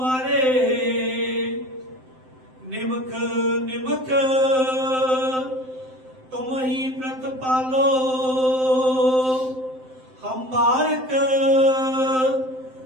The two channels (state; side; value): late; left; 7.7 ms